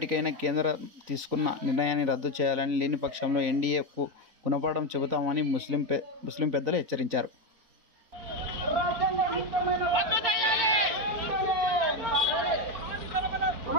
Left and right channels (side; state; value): left; late; 4.0 ms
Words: కేంద్రం తీసుకున్న నిర్ణయాన్ని రద్దు చేయాలని, లేని పక్షంలో ఎన్డీఏకు గుణపాఠం చెబుతామని ముస్లిం పెద్దలు హెచ్చరించారు.